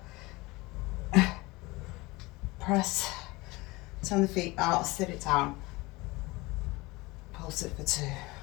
press, turn the feet out, sit it down, pulse it for 2.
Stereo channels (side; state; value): right; quieter; 22.5 dB